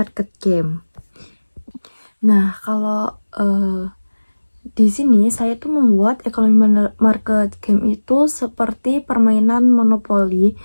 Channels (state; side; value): inverted; both; correlation -1.00